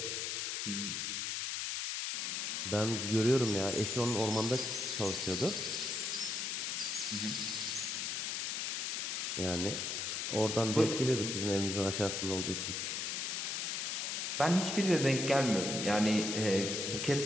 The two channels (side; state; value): left; noise; hiss, 1 dB below the sound